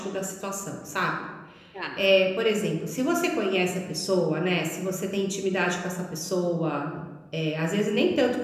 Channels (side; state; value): both; identical; correlation 1.00